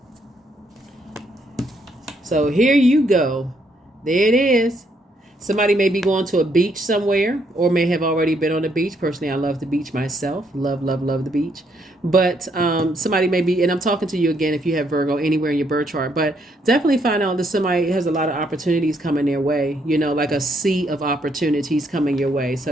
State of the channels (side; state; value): both; normal; correlation 0.73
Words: So here you go. There it is. Somebody may be going to a beach somewhere or may have already been on the beach. Personally, I love the beach myself. Love, love, love the beach. But somebody may be, and I'm talking to you again if you have Virgo anywhere in your birth chart, but definitely find out that somebody has a lot of opportunities coming their way, like a sea of opportunities coming your way. So